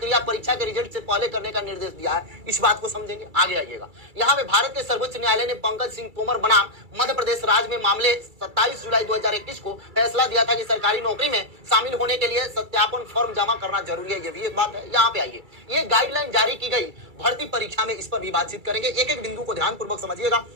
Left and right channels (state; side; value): late; left; 2.3 ms